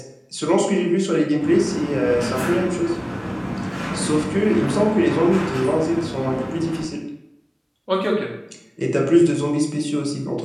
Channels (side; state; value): both; identical; correlation 1.00